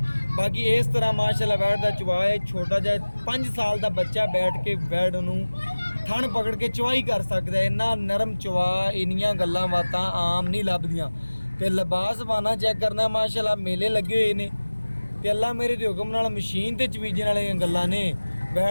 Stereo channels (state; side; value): inverted; both; correlation -1.00